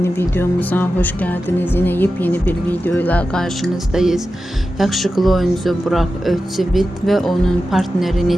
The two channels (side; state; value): both; normal; correlation 0.92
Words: videomuza hoş geldiniz. Yine yepyeni bir videoyla karşınızdayız. Yakışıklı oyuncu Burak Özçivit ve onun partneri